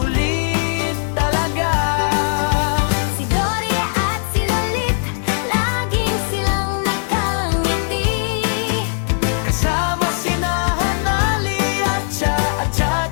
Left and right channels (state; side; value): silent; right; 67 dB below the other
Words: talaga. Si Dory at si Lolit, laging silang nakangiti. Kasama sina Hanali at Cha